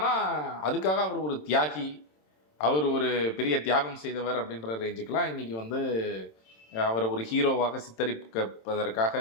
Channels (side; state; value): right; late; 27 ms